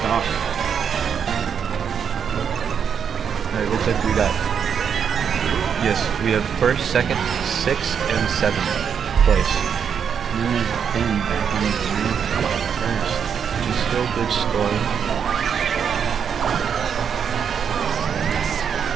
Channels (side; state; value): left; quieter; 7.4 dB